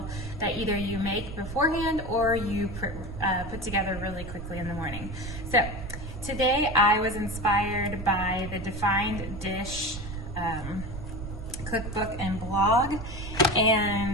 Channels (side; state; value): right; noise; rumble, 9 dB below the sound